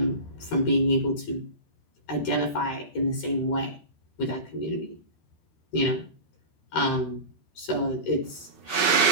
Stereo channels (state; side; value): late; right; 13 ms